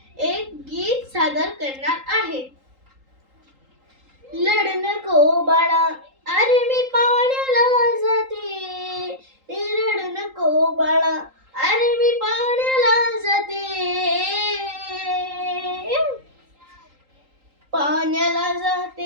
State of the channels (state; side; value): late; left; 3.8 ms